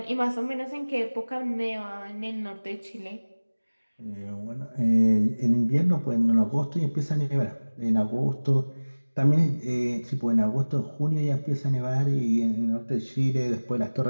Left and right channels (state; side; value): inverted; both; correlation -1.00